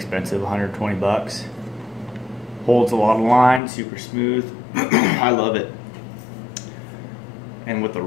120 bucks. Holds a lot of line, super smooth. I love it. And with the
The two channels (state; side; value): drops out; right; at 3.6 s